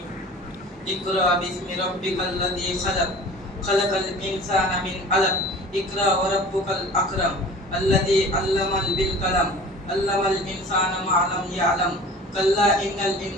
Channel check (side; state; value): both; normal; correlation 0.42